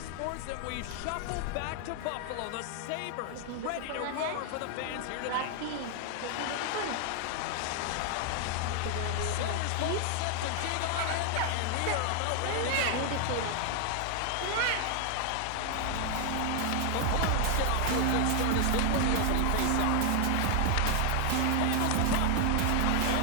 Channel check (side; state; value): both; different; correlation 0.00